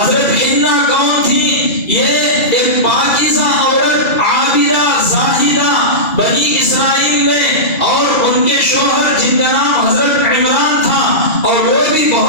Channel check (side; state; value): right; late; 2.4 ms